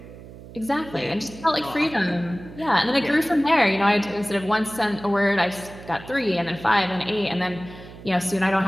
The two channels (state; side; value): noise; right; hum, 16 dB below the sound